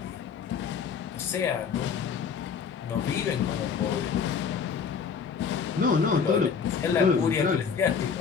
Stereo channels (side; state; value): right; quieter; 6.4 dB